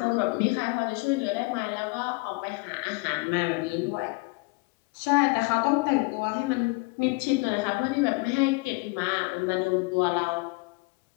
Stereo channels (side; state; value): right; quieter; 27.4 dB